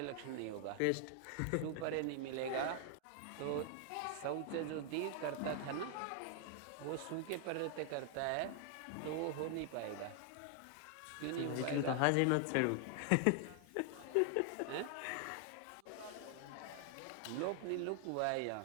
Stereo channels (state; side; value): different; both; correlation 0.00